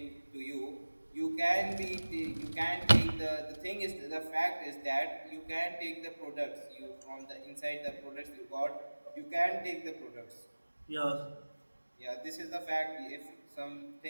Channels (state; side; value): inverted; both; correlation -1.00